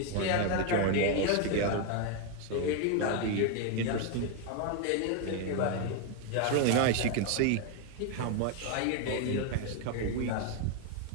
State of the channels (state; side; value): different; both; correlation 0.01